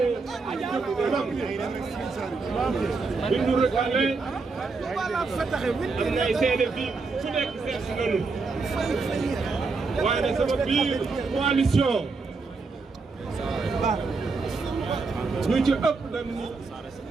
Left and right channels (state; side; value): quieter; left; 4.2 dB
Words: jëm kanam bi nu recalé am na ay seede fii su nekk seet si nañu waaye nag sama biir coalition ñu ci ëpp dem ni